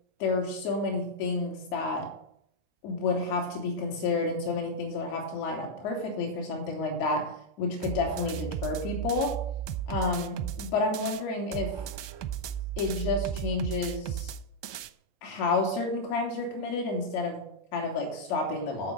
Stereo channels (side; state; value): right; late; 1.2 ms